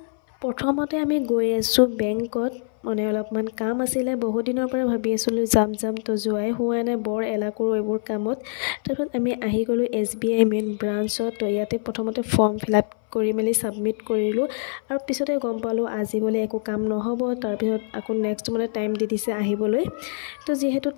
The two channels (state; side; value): silent; right; 59 dB below the other